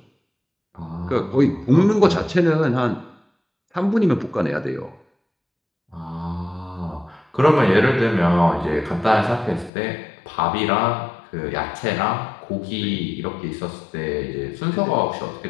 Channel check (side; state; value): right; drops out; at 9.7 s